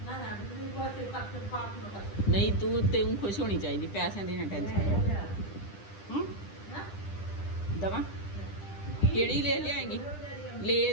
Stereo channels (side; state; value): right; late; 10 ms